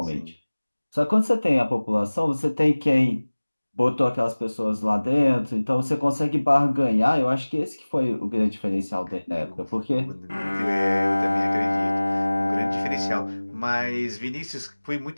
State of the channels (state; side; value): inverted; both; correlation -1.00